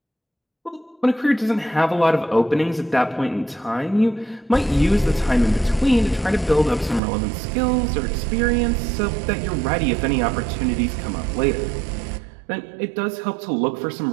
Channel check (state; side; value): drops out; left; at 7.0 s